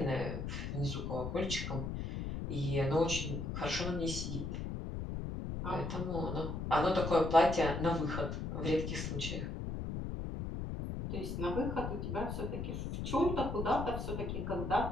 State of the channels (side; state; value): left; noise; rumble, 4 dB below the sound